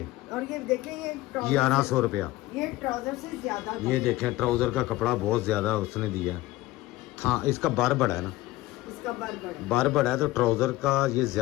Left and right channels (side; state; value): right; quieter; 17.3 dB